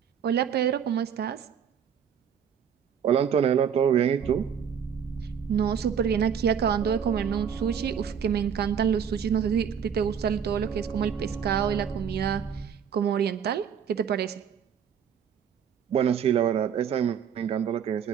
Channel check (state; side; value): quieter; left; 7.8 dB